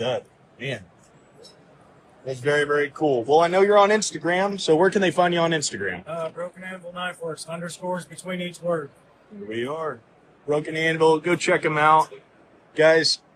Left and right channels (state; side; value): identical; both; correlation 1.00